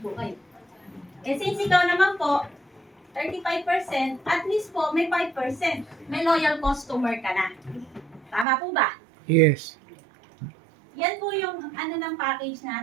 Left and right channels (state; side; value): drops out; left; at 8.5 s